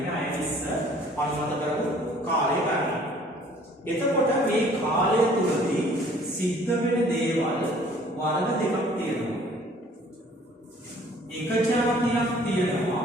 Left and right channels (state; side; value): normal; both; correlation 0.55